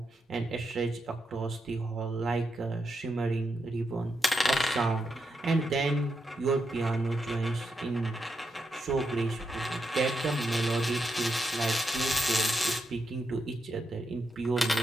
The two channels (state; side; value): normal; both; correlation 0.84